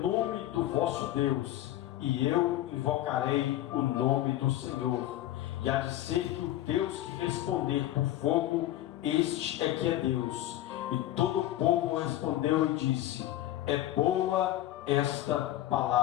nome do vosso Deus, e eu invocarei o nome do Senhor. E há de ser que o Deus que responder por fogo, este é que é Deus. E todo o povo respondeu e disse: é boa esta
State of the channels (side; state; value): right; quieter; 14.0 dB